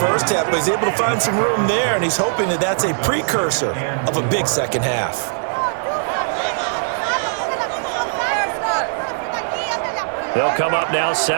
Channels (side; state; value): left; silent; digital silence